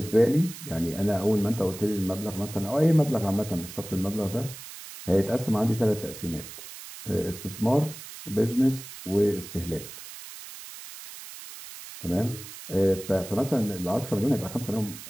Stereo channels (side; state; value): right; noise; hiss, 13 dB below the sound